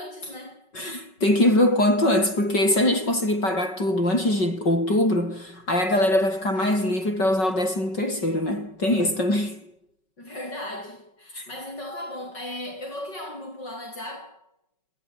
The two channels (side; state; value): right; late; 5.4 ms